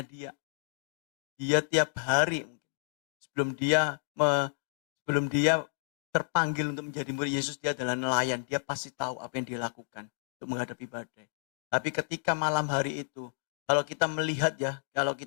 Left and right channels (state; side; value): silent; right; digital silence